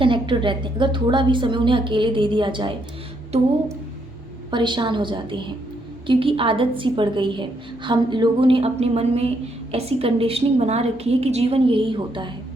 रहते हैं। अगर थोड़ा भी समय उन्हें अकेले दे दिया जाए तो वो परेशान हो जाते हैं, क्योंकि आदत सी पड़ गई है। हम लोगों ने अपने मन में ऐसी कंडीशनिंग बना रखी है कि जीवन यही होता है।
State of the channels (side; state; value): both; normal; correlation 0.75